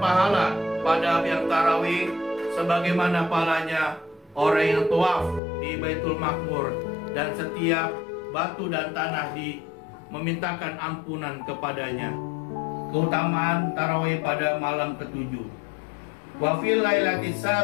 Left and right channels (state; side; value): drops out; right; at 5.4 s